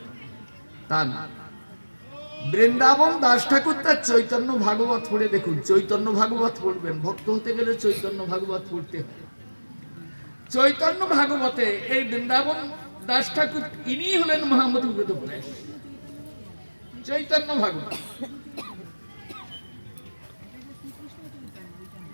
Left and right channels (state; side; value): inverted; both; correlation -1.00